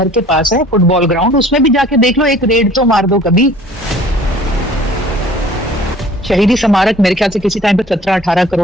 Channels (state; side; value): normal; both; correlation 0.50